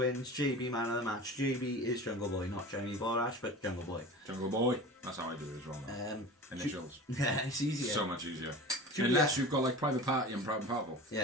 JB man of the match. JB is Jungle Boy, not Jeremy Borash, but Jungle Boy. Jungle Boy. That's how I do it as well. Now. Initials. Yeah, it's easier. So much easier. Julia. Unless you've got like Private Party and Proud and Powerful.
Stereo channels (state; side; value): normal; both; correlation 0.35